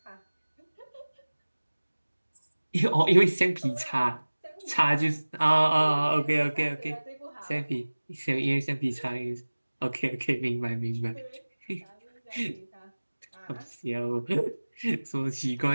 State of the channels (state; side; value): inverted; both; correlation -1.00